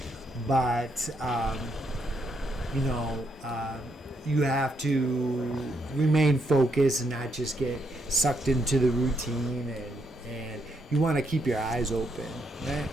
But you have to remain focused and not just get sucked into the routine, and you want to keep your eyes open, right?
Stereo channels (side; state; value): both; normal; correlation 0.77